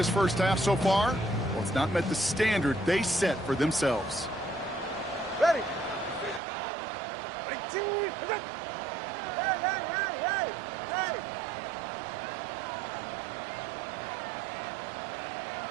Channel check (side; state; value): left; drops out; at 6.4 s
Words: first half so far, well, it's not met the standard they set for themselves. Ready. Ready. Hey, hey, hey, hey, hey.